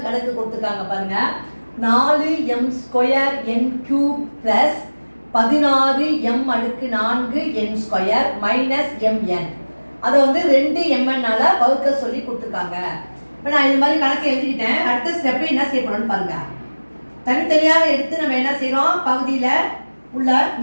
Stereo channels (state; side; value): inverted; both; correlation -1.00